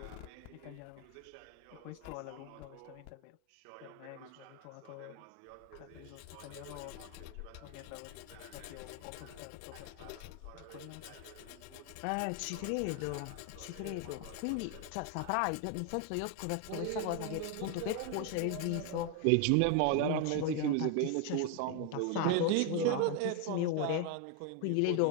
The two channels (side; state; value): both; different; correlation 0.01